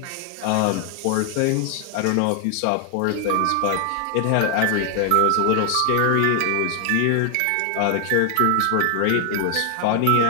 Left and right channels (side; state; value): both; different; correlation 0.00